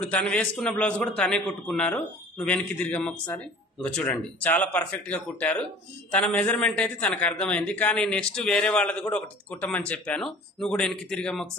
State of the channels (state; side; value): normal; both; correlation 0.45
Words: తను వేసుకున్న బ్లౌజ్ కూడా తనే కుట్టుకున్నారు. నువ్వు వెనక్కి తిరిగమ్మ ఒకసారి. ఇంకా చూడండి, చాలా పర్ఫెక్ట్ గా కుట్టారు. తన మెజర్మెంట్ అయితే తనకు అర్థమైంది. కానీ నెక్స్ట్ వేరే వాళ్ళది కూడా ఒకటి కుట్టమని చెప్పాను. నువ్వు కూడా వెనక్కి తిరిగమ్మ